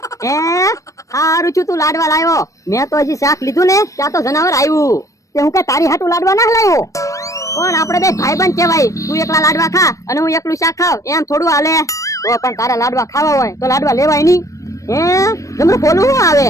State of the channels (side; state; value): right; late; 0.16 ms